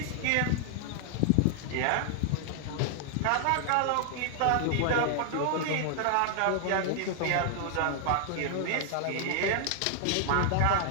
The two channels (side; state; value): both; different; correlation 0.00